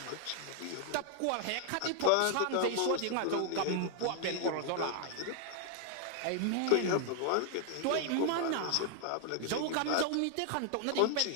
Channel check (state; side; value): different; both; correlation 0.00